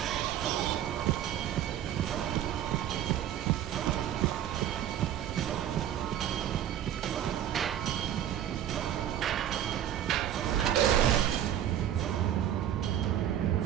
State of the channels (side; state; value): left; quieter; 10.9 dB